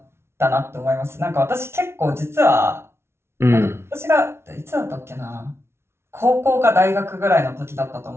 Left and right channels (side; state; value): left; late; 0.12 ms